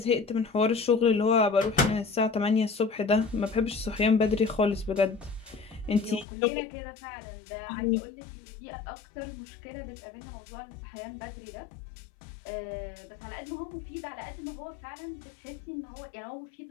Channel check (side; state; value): right; drops out; at 6.2 s